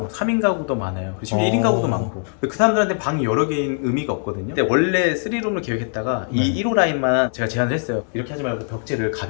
3인 가구도 많아요. 그리고 심지어 1인 가구도 많고. 근데 그 사람들한테 방이 여러 개인 의미가 없거든요. 근데 원래 3룸을 계획했다가 네. 이 1호 라인만 제가 제안을 했어요. 이렇게 하지 말고 벽지를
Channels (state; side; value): silent; right; 56 dB below the other